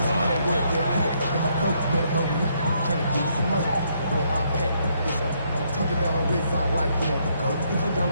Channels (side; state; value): both; inverted; correlation -0.73